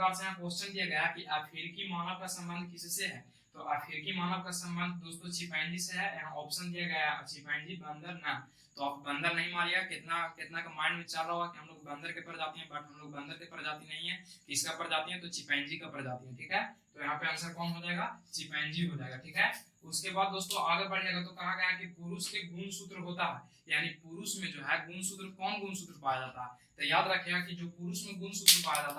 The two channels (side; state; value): both; identical; correlation 1.00